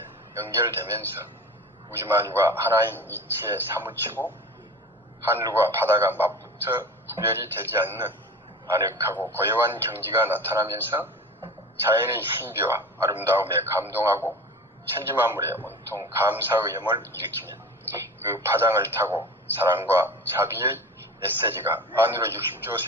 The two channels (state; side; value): normal; both; correlation 0.34